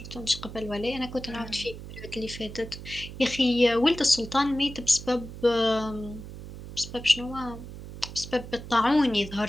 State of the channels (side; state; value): right; noise; hum, 12 dB below the sound